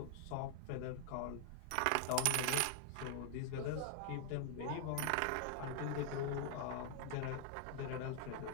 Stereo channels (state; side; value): different; both; correlation 0.00